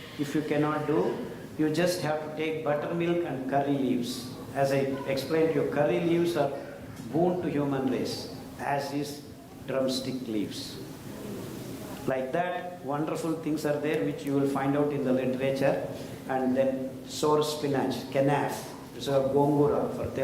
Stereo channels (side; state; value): both; identical; correlation 1.00